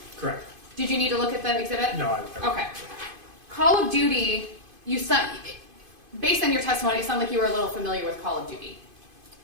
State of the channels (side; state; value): left; late; 2.5 ms